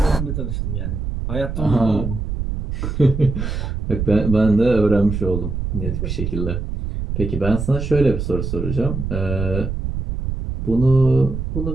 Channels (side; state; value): right; noise; rumble, 4 dB below the sound